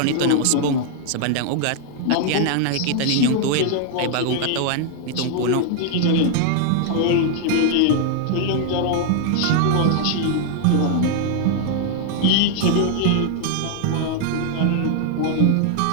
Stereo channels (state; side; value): different; both; correlation 0.00